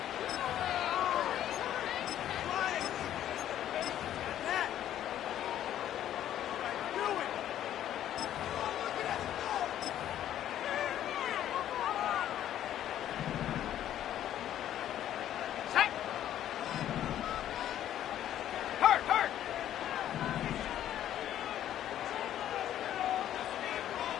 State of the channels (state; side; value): quieter; right; 11.5 dB